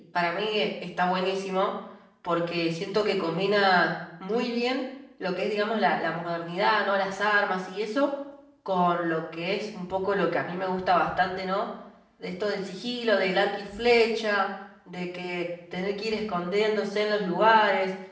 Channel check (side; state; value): both; identical; correlation 1.00